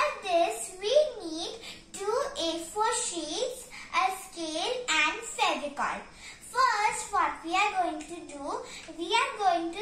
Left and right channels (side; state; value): both; identical; correlation 1.00